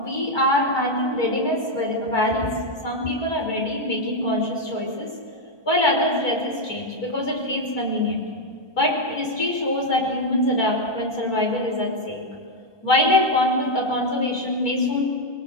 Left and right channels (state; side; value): late; right; 1.2 ms